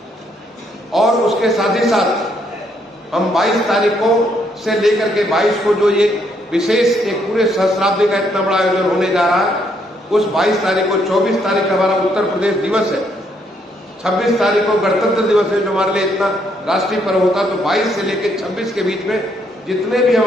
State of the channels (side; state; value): both; normal; correlation 0.72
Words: और उसके साथ ही साथ हम 22 तारीखों से लेकर के 22 को जो ये विशेष एक पूरे सहस्राब्दी का इतना बड़ा आयोजन होने जा रहा है, उस 22 तारीख को 24 तारीख हमारा उत्तर प्रदेश दिवस है, 26 तारीख को गणतंत्र दिवस है जो हमारे लिए इतना राष्ट्रीय पर्व होता है। तो 22 से लेकर 26 के बीच में जितने भी